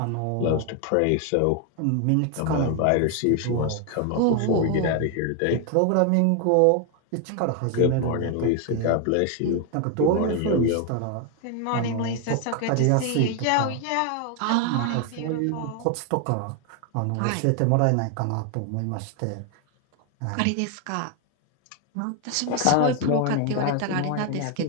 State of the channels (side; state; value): both; different; correlation 0.01